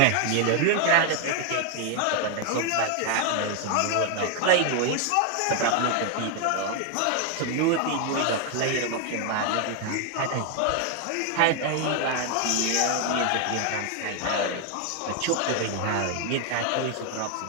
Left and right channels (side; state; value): both; different; correlation 0.01